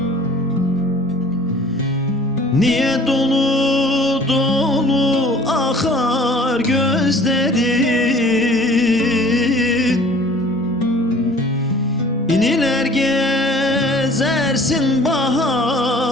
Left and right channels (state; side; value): normal; both; correlation 0.50